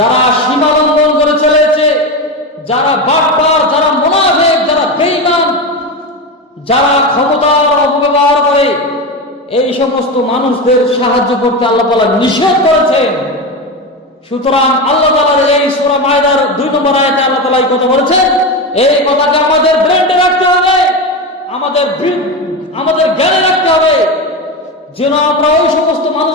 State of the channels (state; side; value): normal; both; correlation 0.19